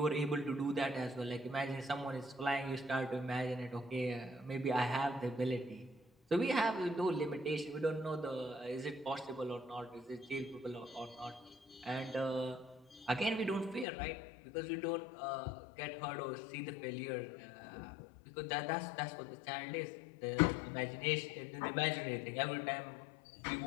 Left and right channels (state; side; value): drops out; right; at 13.9 s